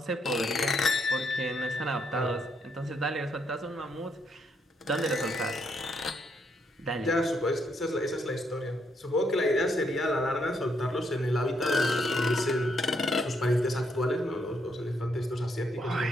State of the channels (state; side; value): normal; both; correlation 0.75